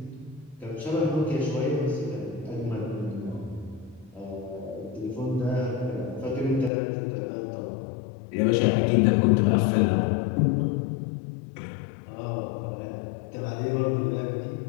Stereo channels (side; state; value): right; drops out; at 6.7 s